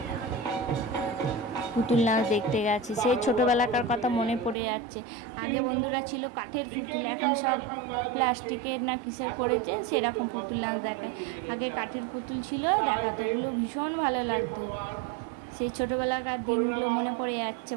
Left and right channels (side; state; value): left; drops out; at 4.5 s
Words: পুতুল নাচ দেখতে গেছে, সেই ছোটোবেলাকার কথা মনে পড়ে যাচ্ছে। আগে বন্ধুরা ছিল কাঠের পুতুল, এখন সব প্লাস্টিকের না কিসের করেছে, সেরকম পুতুল নাচ দেখায়। আগে কাঠের পুতুল ছিল, দেখাতো, ওগুলো ভীষণ ভালো লাগতো। সেই ছোটোবেলাকার দিনগুলো মনে পড়ে যাচ্ছে